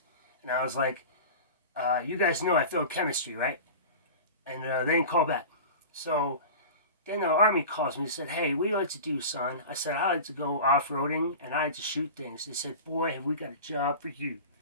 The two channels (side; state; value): both; inverted; correlation -0.34